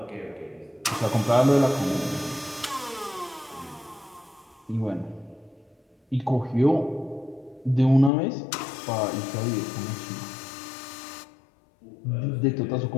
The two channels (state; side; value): drops out; right; at 8.1 s